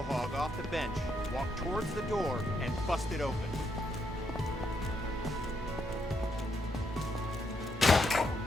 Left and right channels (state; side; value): normal; both; correlation 0.77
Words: hog off the bench, walk towards the door, and bust it open.